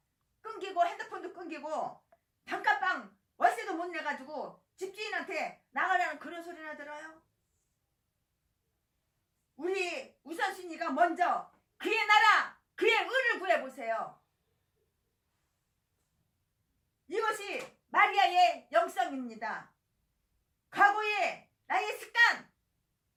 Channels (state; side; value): identical; both; correlation 1.00